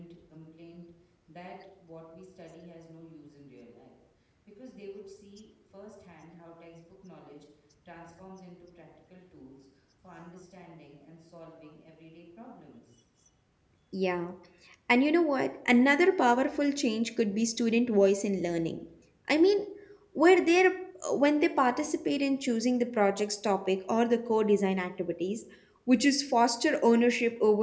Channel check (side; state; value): both; identical; correlation 1.00